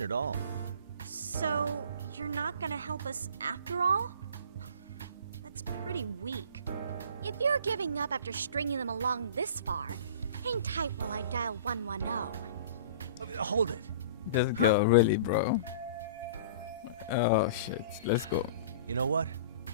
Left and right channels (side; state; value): both; inverted; correlation -0.43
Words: at all? So, you're not gonna help us after all? That's pretty weak. If you're giving up after stringing them along this far, hang tight while I dial 110. Hold it. This girl, really, bro. Oh, shit. Let's go. You know what?